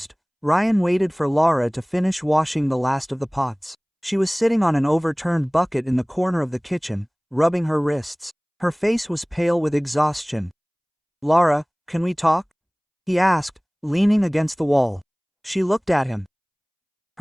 Ryan waited for Laura to finish washing the last of the pots. She was sitting on an overturned bucket in the corner of the kitchen, rubbing her wrists. Her face was pale with exhaustion. Laura, can we talk? He asked, leaning against the wall. She looked at him.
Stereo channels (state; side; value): identical; both; correlation 1.00